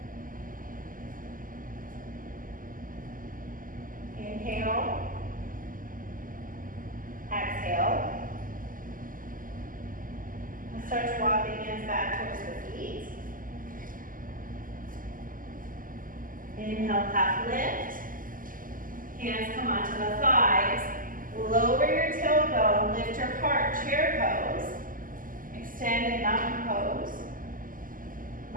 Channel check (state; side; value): late; left; 0.40 ms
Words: Inhale. Exhale. We'll start to walk the hands back towards the feet. Inhale, half lift. Hands come onto the thighs. Lower your tailbone, lift your heart, chair pose. Extended mountain pose.